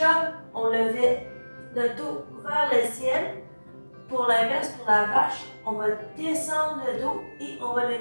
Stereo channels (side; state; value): both; inverted; correlation -1.00